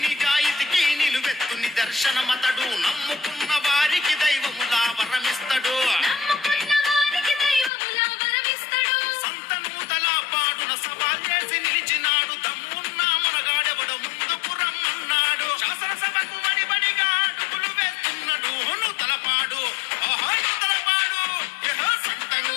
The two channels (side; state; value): right; drops out; at 7.7 s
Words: నిజాయితీకి నిలువెత్తు నిదర్శనమతడు నమ్ముకున్న వారికి దైవములా వరమిస్తడు సంతను తలపాడున సవాల్ చేసి నిలిచినాడు దమ్మున్నా మనగాడెవడ ముందుకు రమ్మన్నాడు శాసనసభకు బడిబడిగా అడుగులు వేస్తున్నాడు తలపాడు తలపాడు సంతను